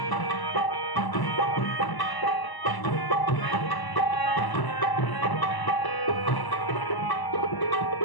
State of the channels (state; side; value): late; right; 1.0 ms